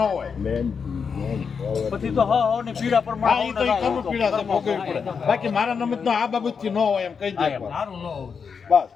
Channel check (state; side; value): quieter; right; 6.0 dB